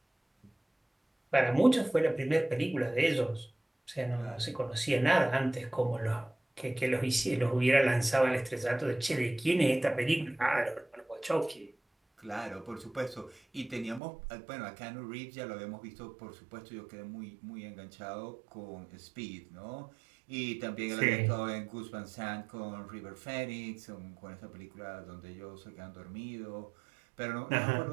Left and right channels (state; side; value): drops out; left; at 14.0 s